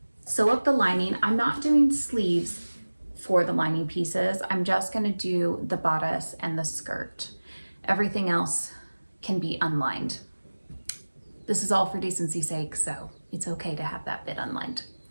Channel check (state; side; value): inverted; both; correlation -1.00